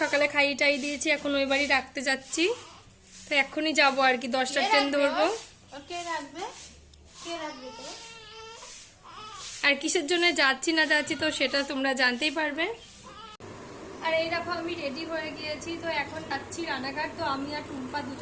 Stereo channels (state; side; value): identical; both; correlation 1.00